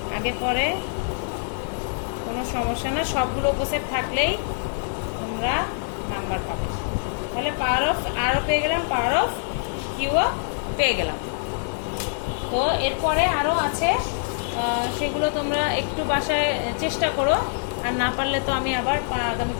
আগে পরে কোনো সমস্যা না। সবগুলো উপসেট থাকলেই তোমরা নাম্বার পাবে। তাহলে পাওয়ার অফ আরও পেয়ে গেলাম, পাওয়ার অফ কিউও পেয়ে গেলাম। তো এরপরে আরও আছে, সেগুলো তোমরা একটু বাসায় চেষ্টা করো, আর না পারলে তো আমি আবার আগামী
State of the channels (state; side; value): silent; right; digital silence